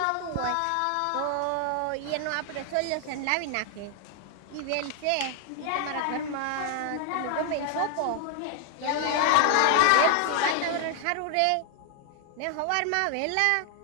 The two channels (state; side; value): different; both; correlation 0.00